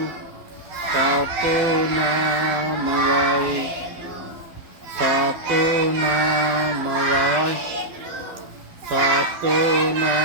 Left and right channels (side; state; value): left; late; 12 ms